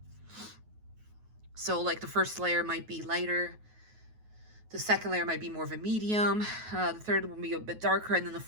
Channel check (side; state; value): left; late; 9.4 ms